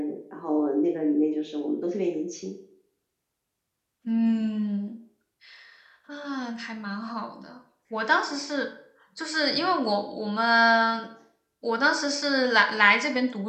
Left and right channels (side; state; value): both; identical; correlation 1.00